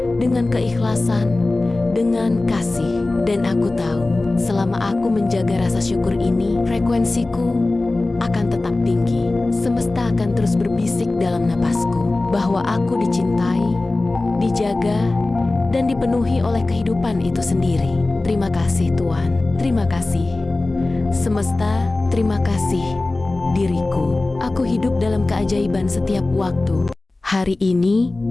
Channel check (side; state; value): right; quieter; 3.0 dB